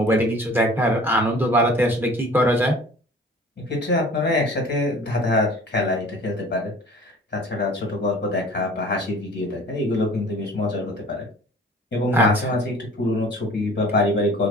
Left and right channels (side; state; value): both; normal; correlation 0.46